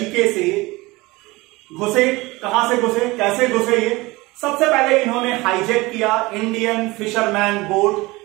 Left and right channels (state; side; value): quieter; left; 21.9 dB